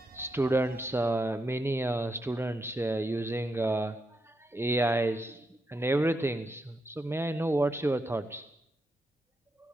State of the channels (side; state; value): both; normal; correlation 0.83